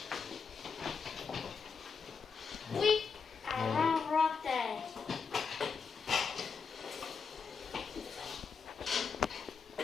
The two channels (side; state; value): right; quieter; 5.6 dB